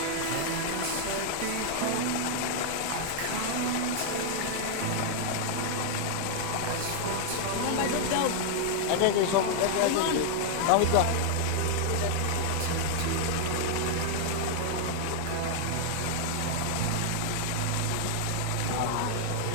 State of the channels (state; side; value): different; both; correlation 0.00